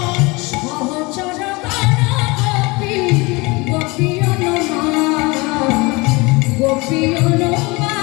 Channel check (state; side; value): quieter; right; 25.3 dB